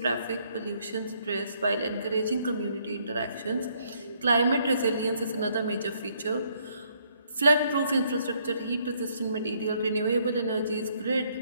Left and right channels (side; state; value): both; inverted; correlation -0.69